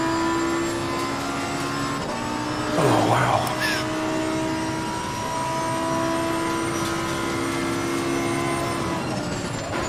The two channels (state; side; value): identical; both; correlation 1.00